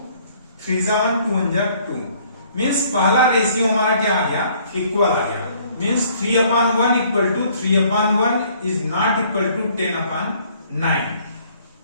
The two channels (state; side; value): inverted; both; correlation -0.60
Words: 3 जा 1 2 1 जा 2, मींस पहला रेशियो हमारा क्या आ गया, इक्वल आ गया। Means 3 upon 1 equal to 3 upon 1 is not equal to 10 upon 9।